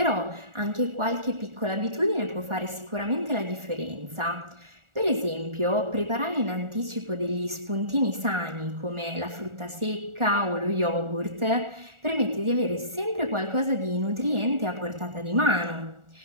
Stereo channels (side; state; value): left; late; 1.4 ms